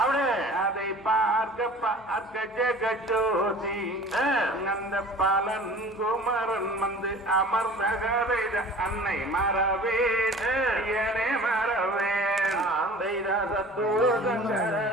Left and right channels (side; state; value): both; normal; correlation 0.44